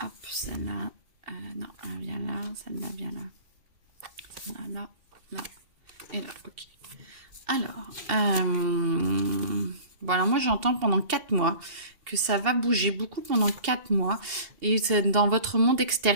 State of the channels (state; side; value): late; left; 2.7 ms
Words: hop, celle-là, non, elle vient là, celle-là vient là. Celle-là, là, et là, ok. Alors, voilà, moi j'entends pendant 4 mois que ça va bouger beaucoup pendant 4 mois et c'est dans votre monde